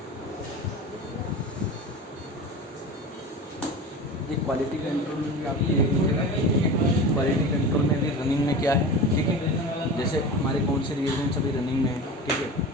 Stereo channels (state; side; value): normal; both; correlation 0.31